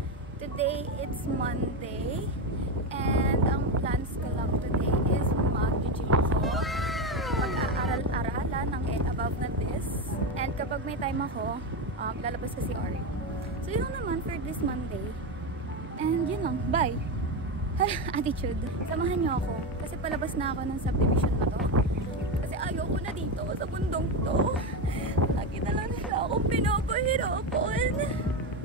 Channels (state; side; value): normal; both; correlation 0.13